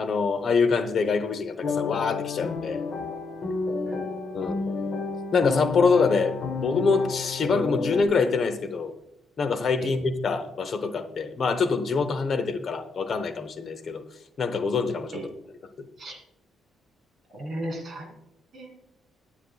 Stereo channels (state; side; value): quieter; right; 4.3 dB